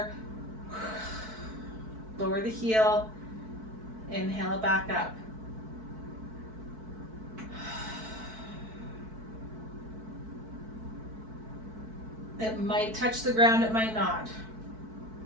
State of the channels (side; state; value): left; late; 4.6 ms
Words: lower the heel, inhale it back up. It might touch the ground, it might not.